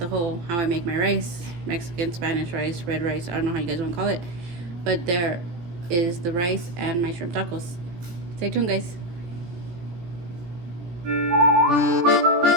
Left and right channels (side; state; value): left; late; 17 ms